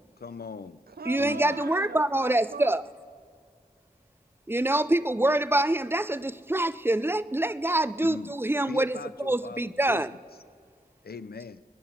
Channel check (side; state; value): both; normal; correlation 0.78